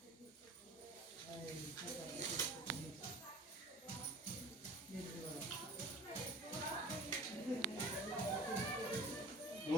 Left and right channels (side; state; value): both; normal; correlation 0.42